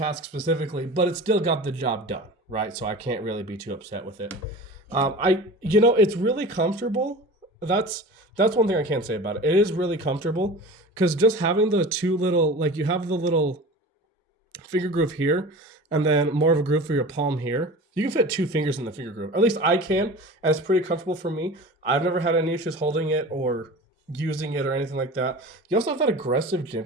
specifically, but it still got the job done, right? So I can't really be too upset with it. It's really comfortable. That's one thing I can say about it. It is really comfortable because just having the two little, like you have the little finger groove here and then more of a groove for your palm here. You can fit 2 fingers in the finger groove. At least I can, and it's pretty comfortable for me. I've never had any issues holding it or using it or anything like that. You also have that aggressive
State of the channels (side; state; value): both; normal; correlation 0.35